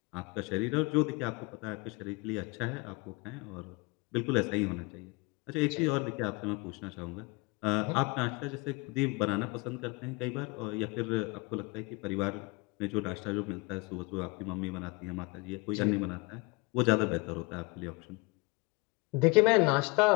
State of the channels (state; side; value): quieter; right; 25.8 dB